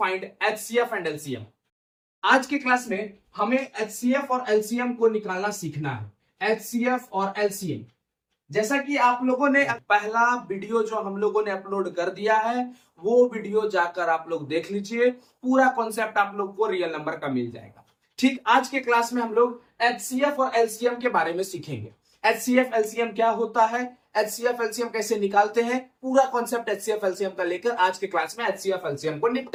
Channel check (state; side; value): identical; both; correlation 1.00